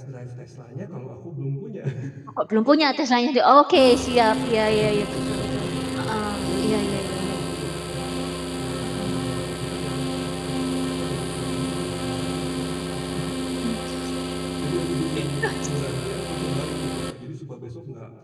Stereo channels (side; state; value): both; identical; correlation 1.00